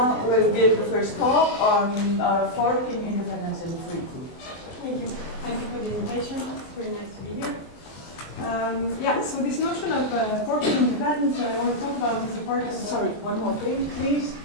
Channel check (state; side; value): late; right; 23 ms